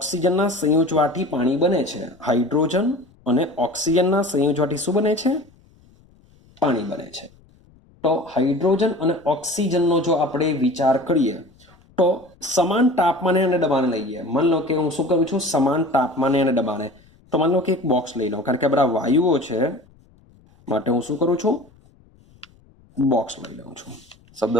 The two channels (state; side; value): noise; left; rumble, 30 dB below the sound